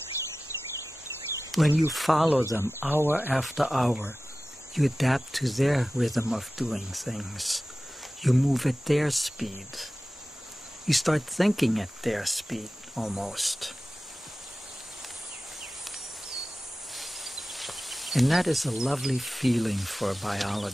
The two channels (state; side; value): normal; both; correlation 0.95